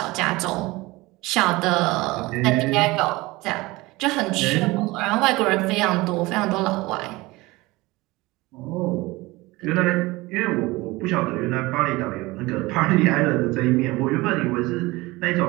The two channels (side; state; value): left; quieter; 21.4 dB